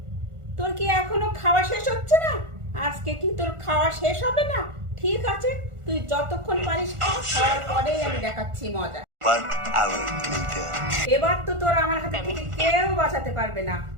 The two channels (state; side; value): late; left; 1.4 ms